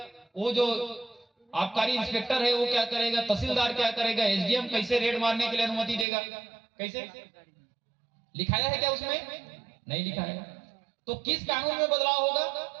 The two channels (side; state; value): left; drops out; at 6.1 s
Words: वो जो आबकारी इंस्पेक्टर है वो क्या करेगा, तहसीलदार क्या करेगा, एसडीएम कैसे रेड मारने के लिए अनुमति देगा? कैसे लिखाया है क्या उसमें? नहीं लिखा है। तो किस कानून में बदलाव होगा?